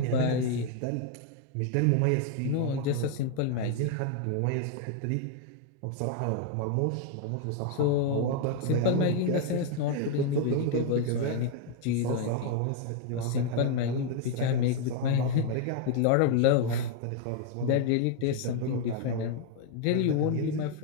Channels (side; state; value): both; different; correlation 0.00